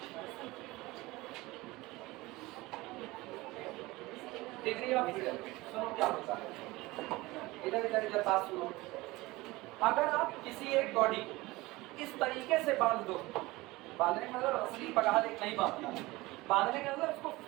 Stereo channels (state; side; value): quieter; left; 20.7 dB